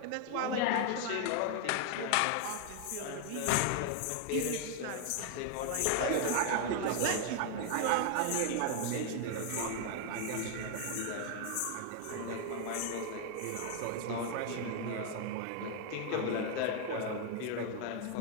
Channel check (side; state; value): both; different; correlation 0.00